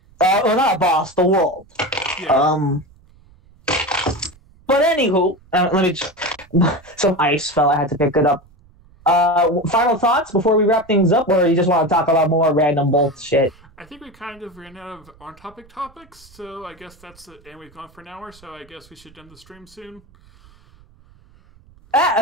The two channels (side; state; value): right; noise; rumble, 28 dB below the sound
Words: Well, not a boss, the world. Yeah. But anywho, let me just... Some ice fell, I had to pick it up. Final thoughts before we wrap things up, or you just want to talk about more random bullshit? I think we kind of ran out of on-topic topics, so I guess that's it. And we've gone for an hour, so I guess we should end the stream soon.